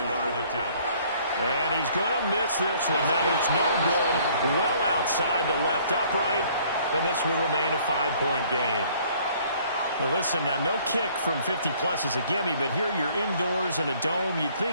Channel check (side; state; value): both; inverted; correlation -0.59